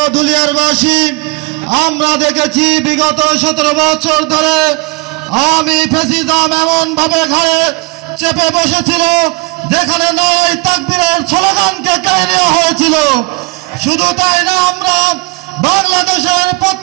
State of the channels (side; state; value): left; quieter; 26.1 dB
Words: ধুলিয়ারবাসী, আমরা দেখেছি বিগত 17 বছর ধরে আওয়ামী ফ্যাসিজম এমন ভাবে ঘরে চেপে বসেছিল যেখানে নয় তাকবীরের স্লোগানকে কেড়ে নেওয়া হয়েছিল। শুধু তাই না, আমরা বাংলাদেশের